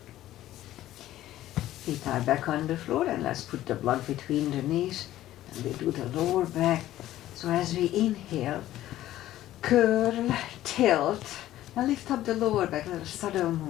Feet are back on the floor, and let's put the block between the knees, and we do the lower back. So as we inhale, curl, tilt, and lift up the lower back, little subtle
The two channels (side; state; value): right; quieter; 14.0 dB